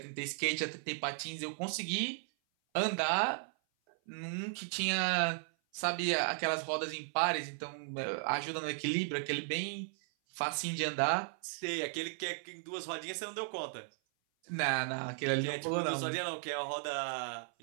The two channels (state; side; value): silent; left; 54 dB below the other